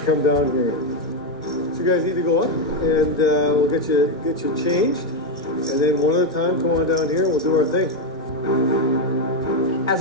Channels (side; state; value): both; normal; correlation 0.06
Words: down here. So you guys need to go up, and we'll get you changed, and then one at a time, come on down here, and we'll do our thing. As